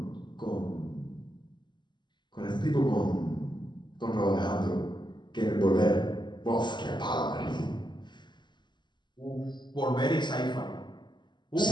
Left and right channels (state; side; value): late; right; 0.22 ms